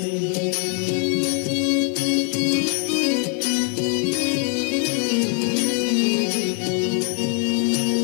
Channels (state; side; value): quieter; right; 37.4 dB